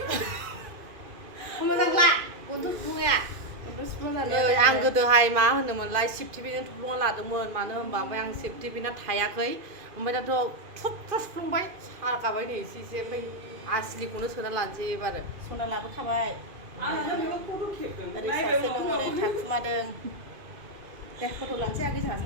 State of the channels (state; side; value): late; left; 2.5 ms